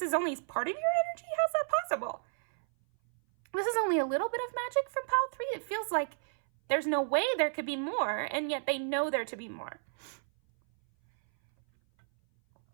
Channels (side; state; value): left; silent; 56 dB below the other